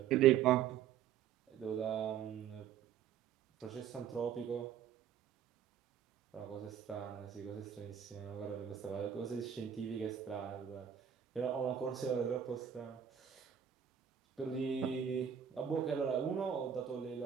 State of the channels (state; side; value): quieter; left; 8.8 dB